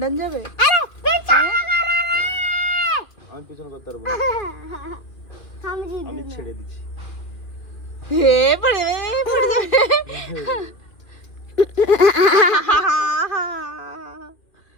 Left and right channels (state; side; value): late; right; 2.3 ms